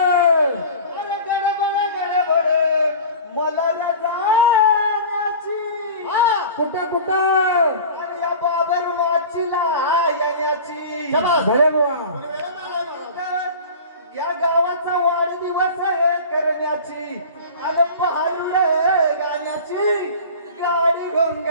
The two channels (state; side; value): inverted; both; correlation -0.38